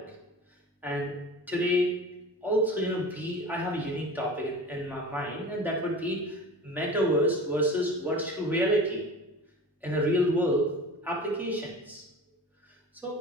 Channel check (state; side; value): normal; both; correlation 0.36